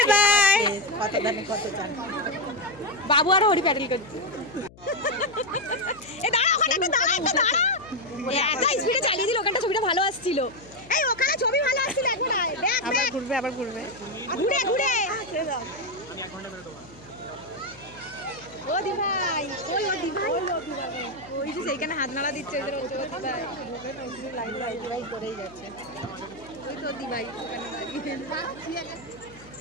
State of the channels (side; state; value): left; noise; hum, 22 dB below the sound